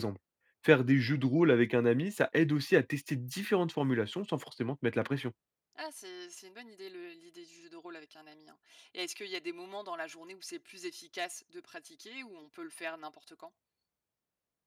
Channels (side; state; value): both; identical; correlation 1.00